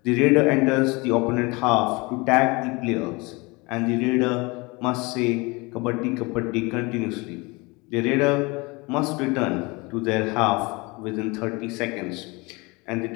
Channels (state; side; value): quieter; right; 26.0 dB